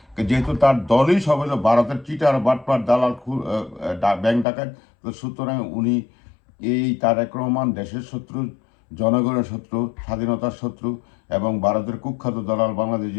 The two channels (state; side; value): drops out; right; at 4.5 s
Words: যেহেতু তার দলই সব হলো ভারতের চিটার বাটপার দালাল ব্যাংক ডাকাত। তো সুতরাং উনি এই তারেক রহমান দেশের শত্রু, জনগণের শত্রু, স্বাধীনতার শত্রু এবং ভারতের কুখ্যাত দালাল। বাংলাদেশ